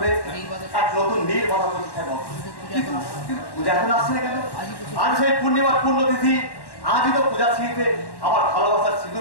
এক নতুন নীর বাধা প্রতিষ্ঠা করো। কিন্তু পূজা এখন আসছে না কেন? আজ সেই পূর্ণিমার পূর্ণতিথি, আজই তো পূজা ছিঁড়িতে আমার ভালোবাসার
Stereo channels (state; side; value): late; right; 1.1 ms